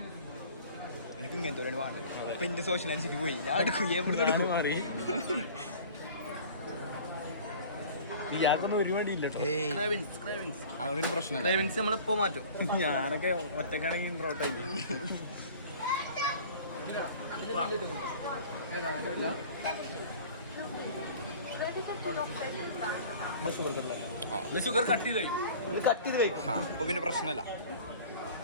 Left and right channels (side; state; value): both; inverted; correlation -0.44